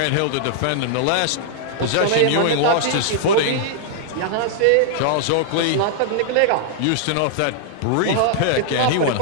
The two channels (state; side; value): different; both; correlation -0.01